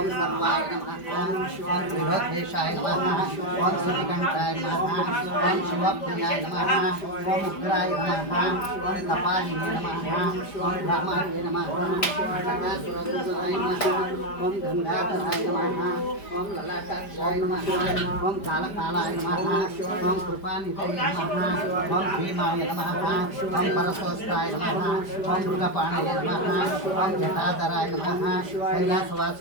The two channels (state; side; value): late; right; 5.0 ms